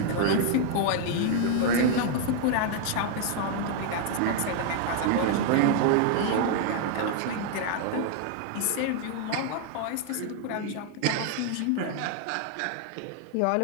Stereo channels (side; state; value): both; different; correlation 0.00